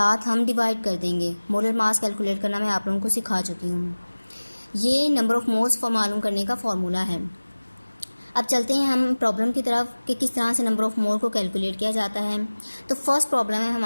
हम डिवाइड कर देंगे। मोलर मास कैलकुलेट करना मैं आप लोगों को सिखा चुकी हूँ। ये नंबर ऑफ मोल्स मालूम करने का फॉर्मूला है। अब चलते हैं हम प्रॉब्लम की तरफ कि किस तरह से नंबर ऑफ मोल को कैलकुलेट किया जाता है। तो फर्स्ट प्रॉब्लम है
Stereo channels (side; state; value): both; inverted; correlation -1.00